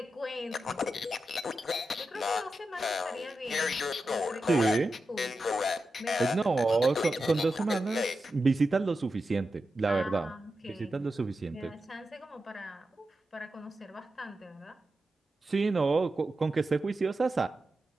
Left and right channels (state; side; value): normal; both; correlation 0.90